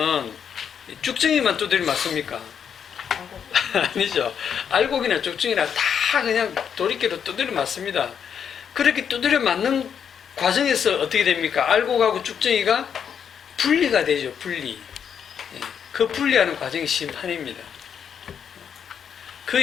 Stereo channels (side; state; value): right; quieter; 7.8 dB